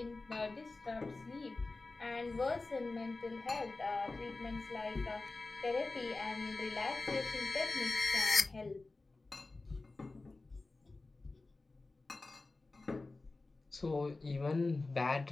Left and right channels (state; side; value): quieter; right; 3.4 dB